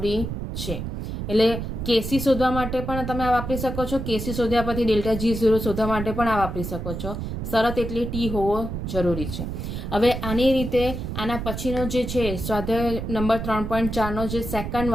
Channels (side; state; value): right; noise; rumble, 5 dB below the sound